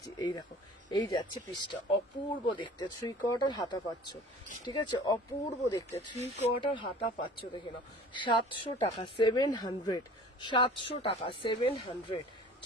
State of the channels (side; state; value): both; normal; correlation 0.45